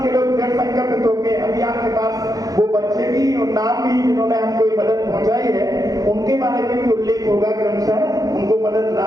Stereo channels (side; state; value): left; late; 0.17 ms